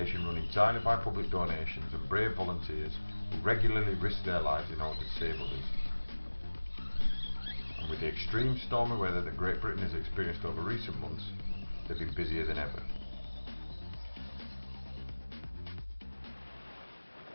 run entirely by public donations and brave volunteers who regularly risk their lives in order to save others. And with the extreme stormy weather that Great Britain has experienced over recent months, they've been busier than ever.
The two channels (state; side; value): inverted; both; correlation -1.00